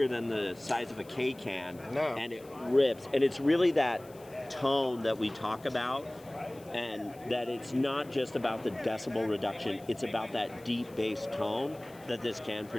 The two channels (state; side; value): noise; left; hiss, 25 dB below the sound